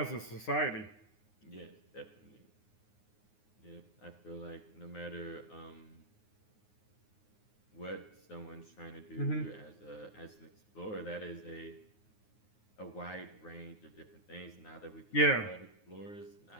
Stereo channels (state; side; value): late; right; 9.5 ms